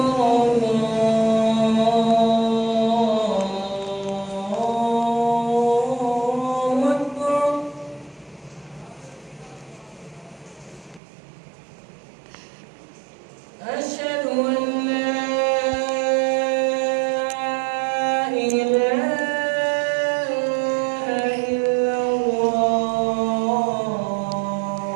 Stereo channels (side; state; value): left; drops out; at 11.0 s